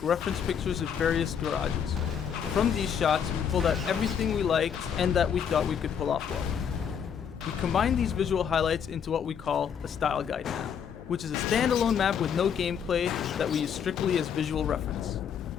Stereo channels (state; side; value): quieter; right; 7.7 dB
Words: reference pictures of various garages. From these shots, we pulled out everything we liked and that we thought we could pull off well. We combined these visual highlights into what we call a style guide map, which is a standalone map with no gameplay that we use strictly as visual reference.